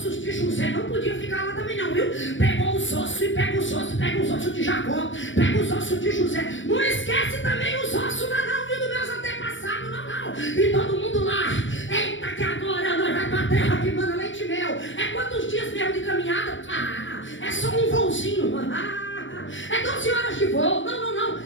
de José. Não podia ficar lá também não, viu? Pegou os ossos e pega os ossos de Jacó, pega os ossos de José. Não esquece também os ossos não, viu, dos meus antepassados, não. E todo mundo lá: eita, que agora nós vamos para a terra que manda leite e mel. É quantos dias mesmo de caminhada? É só um voozinho. É 12 horas de voo. Não.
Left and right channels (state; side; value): late; right; 0.56 ms